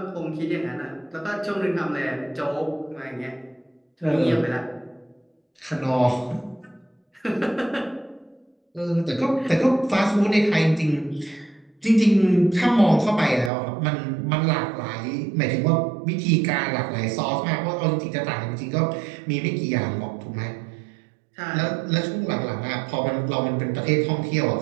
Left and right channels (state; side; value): drops out; left; at 13.5 s